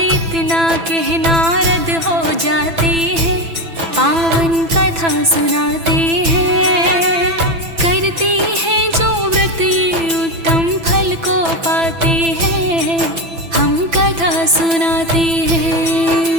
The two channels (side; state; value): left; late; 6.0 ms